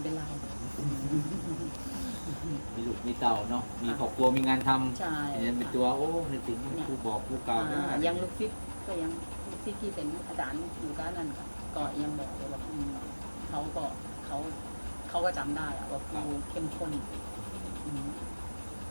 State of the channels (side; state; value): both; inverted; correlation -1.00